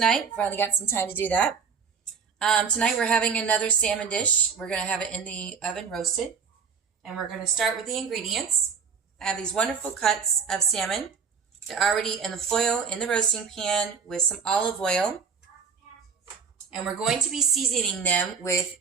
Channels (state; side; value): quieter; left; 6.1 dB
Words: Finally got some time to do that. Tonight we're having another salmon dish. We're going to have it in the oven roasted. And we're going to start with the ingredients. I have these wonderful cuts of salmon. They're already in the foil in the roasting pan with some olive oil. And we're going to be seasoning them with